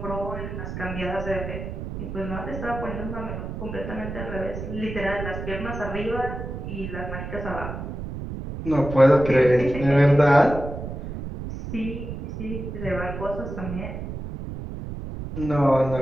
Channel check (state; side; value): noise; right; rumble, 7 dB below the sound